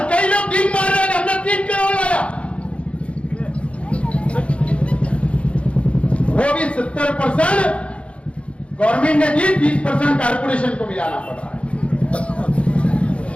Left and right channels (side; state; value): right; late; 0.061 ms